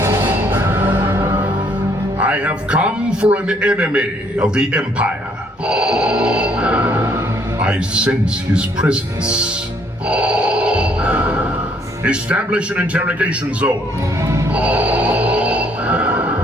I have come for an enemy of the Empire. I sense his presence. Establish an interrogation zone.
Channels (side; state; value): both; normal; correlation 0.66